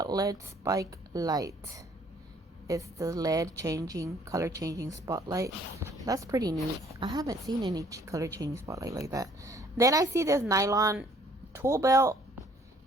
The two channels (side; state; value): both; normal; correlation 0.60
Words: LED spike light. It's the LED color changing spotlight. That's pretty neat. I haven't seen any color changing spotlight like that. Then I see this nylon tool belt.